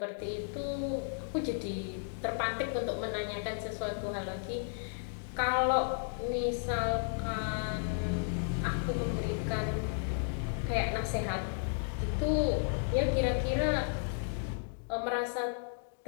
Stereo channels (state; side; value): silent; right; digital silence